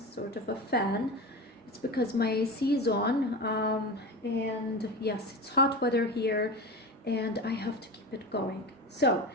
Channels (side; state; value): both; normal; correlation 0.26